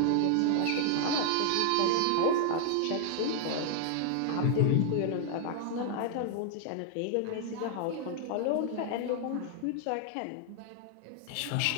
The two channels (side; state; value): both; different; correlation 0.00